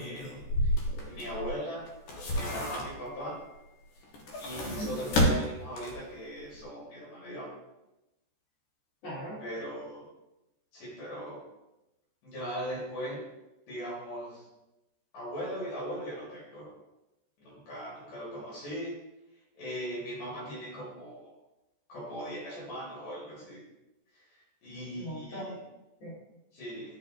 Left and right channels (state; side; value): late; right; 14 ms